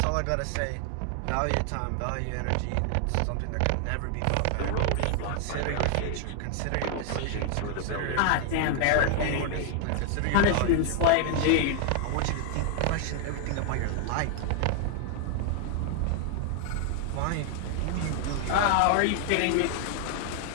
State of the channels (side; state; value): both; different; correlation 0.00